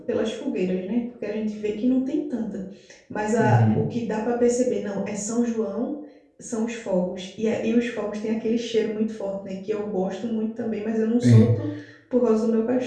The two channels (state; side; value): identical; both; correlation 1.00